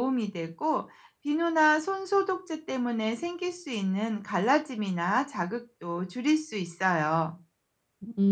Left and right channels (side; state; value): both; identical; correlation 1.00